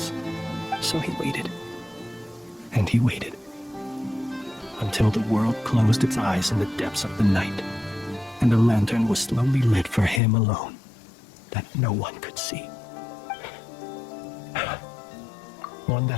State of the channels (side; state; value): right; drops out; at 10.2 s